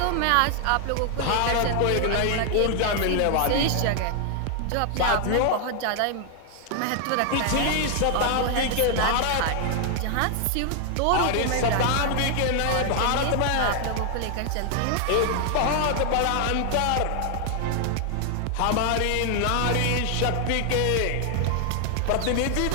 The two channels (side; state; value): both; different; correlation 0.00